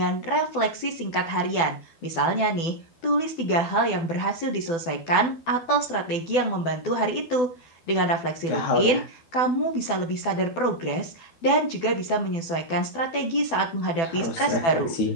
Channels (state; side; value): late; right; 12 ms